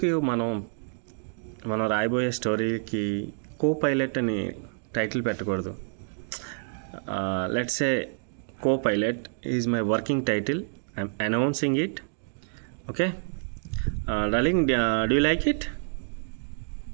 మనం రాయబోయే స్టోరీకి co pilot అని టైటిల్ పెట్టకూడదు? Let's say co pilot is my working title. I'm announcing it. Okay darling, do you like it?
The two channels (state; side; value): silent; left; digital silence